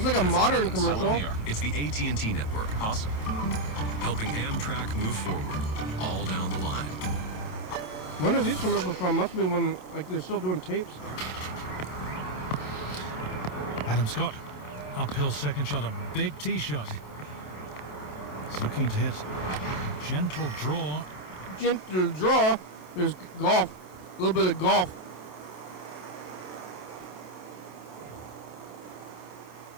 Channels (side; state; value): right; late; 27 ms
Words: like a modern commercial. It's the AT&T network. Awesome. Helping Amtrak move forward, all down the line. When are these commercials from? Must be when, like, they're still doing tapes. Adam Scott, uphill second shot, a big tee shot. It's looking to hit. Gentle draw. Gentle draw. There's golf. A little bit of golf.